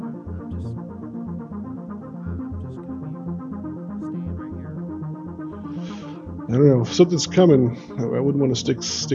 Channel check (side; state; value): both; identical; correlation 1.00